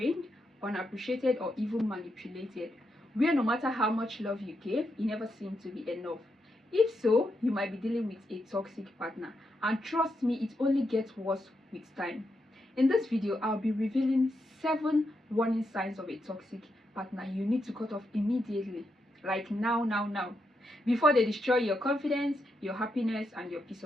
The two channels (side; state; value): both; normal; correlation 0.83